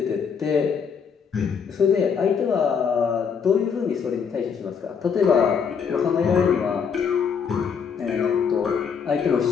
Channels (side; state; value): right; quieter; 6.5 dB